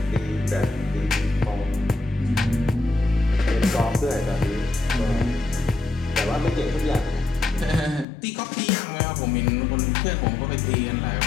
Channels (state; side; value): drops out; right; at 8.1 s